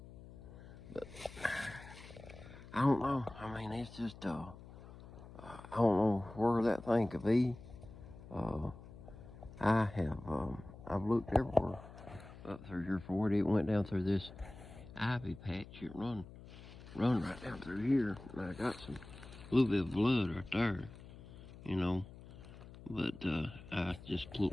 But I don't know. I mean, it's just I don't know where that thing could be. I've looked everywhere up through here for it. It went down through this ivy patch. It run right down through here, and I got a little bit of blood right there, you know. But I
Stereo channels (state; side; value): noise; left; hum, 16 dB below the sound